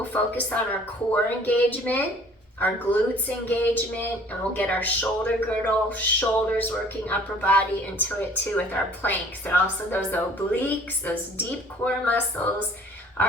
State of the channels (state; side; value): normal; both; correlation 0.53